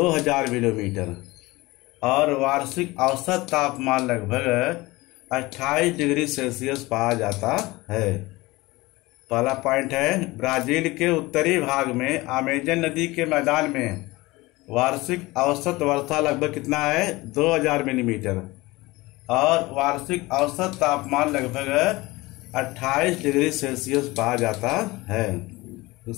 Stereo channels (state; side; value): quieter; right; 21.1 dB